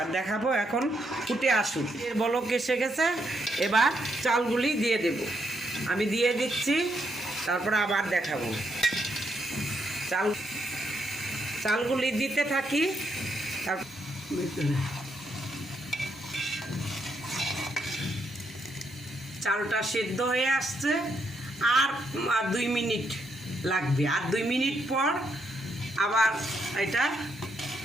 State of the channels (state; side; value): normal; both; correlation 0.78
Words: এখন ফুটে আসুক, এর বলক এসে গেছে। এবার চালগুলি দিয়ে দেব, আমি দিয়ে দিচ্ছি, তারপরে আবার দেখাবো। চালগুলি দিতে থাকি। চালটা সেদ্ধ হয়ে আসছে, আর 2 মিনিট লাগবে। আর 2 মিনিট পর আবার এটা